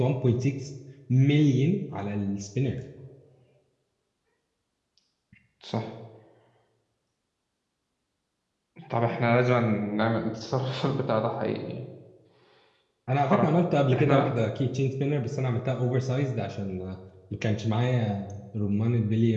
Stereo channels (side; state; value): both; identical; correlation 1.00